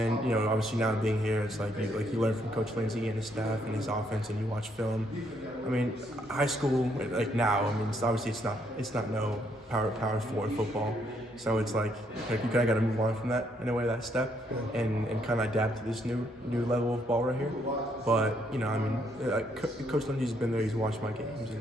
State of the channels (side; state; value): both; normal; correlation 0.72